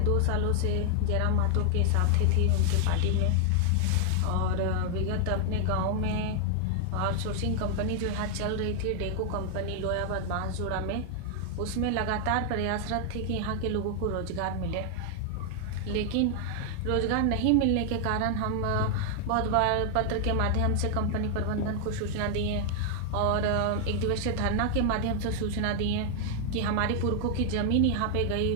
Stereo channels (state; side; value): different; both; correlation 0.00